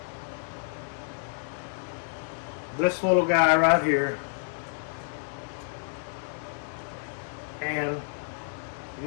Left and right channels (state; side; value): silent; right; 58 dB below the other